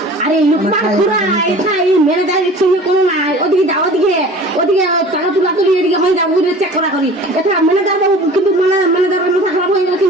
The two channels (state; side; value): normal; both; correlation 0.43